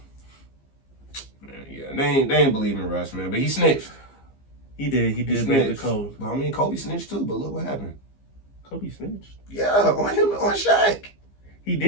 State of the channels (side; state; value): right; late; 15 ms